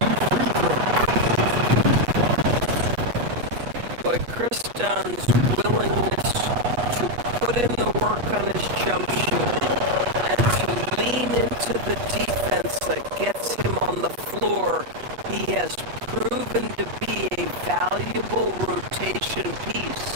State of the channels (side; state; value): left; late; 8.3 ms